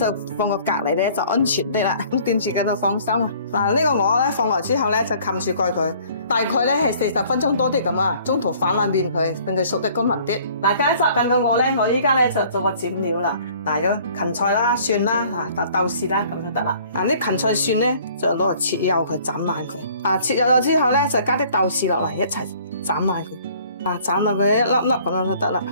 放個隔籬咧就安全啲啦。咁掂住嘅就放心啊。呢個鵝咧放落之後咧就冚住蓋佢，大概咧係40分鐘多啲咁啊。中途反下面佢，令佢熟得均勻啲。嗱，加雜緊個鵝咧，我依家咧就做個剪料啦。有芹菜啦、蒜啦、豆豉啦，咁就得啦。啲芹菜蒜咧就攞嚟切幼佢，斬爛佢。切幼咗之後咧就加啲豆豉落嚟一齊斬爛佢。斬到佢一粒粒咁樣就得啦。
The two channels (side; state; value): both; inverted; correlation -0.55